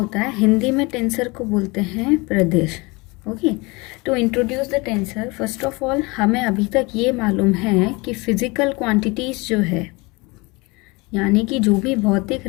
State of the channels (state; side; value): quieter; right; 25.6 dB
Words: है? हिंदी में टेंसर को बोलते हैं प्रदेश. Okay, to introduce the tensor, first of all हमें अभी तक ये मालूम है कि फिजिकल क्वांटिटीज़ जो है, यानी कि जो भी भौतिक